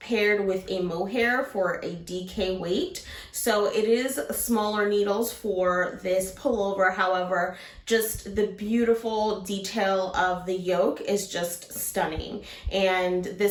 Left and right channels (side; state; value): both; identical; correlation 1.00